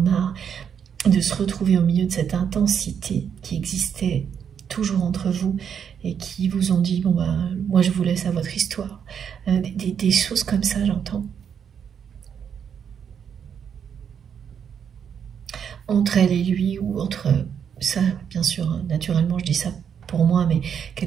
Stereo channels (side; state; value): left; quieter; 7.8 dB